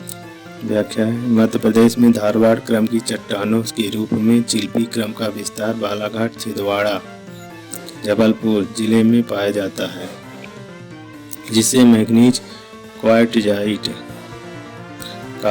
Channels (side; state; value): both; identical; correlation 1.00